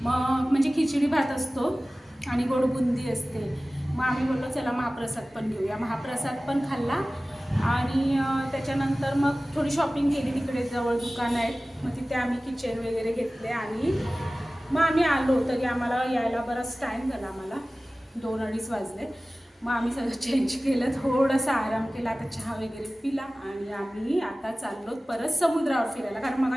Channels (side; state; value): both; normal; correlation 0.97